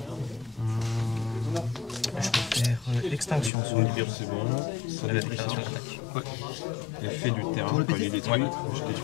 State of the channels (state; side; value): drops out; right; at 3.5 s